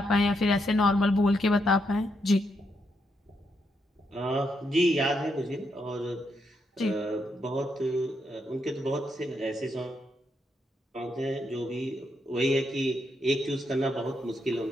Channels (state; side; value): normal; both; correlation 0.80